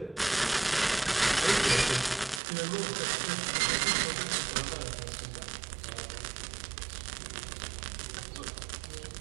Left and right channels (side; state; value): left; drops out; at 2.4 s